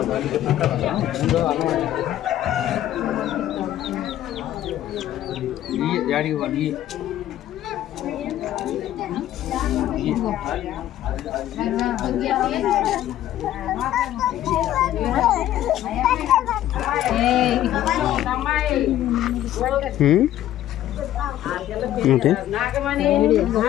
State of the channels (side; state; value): right; quieter; 12.8 dB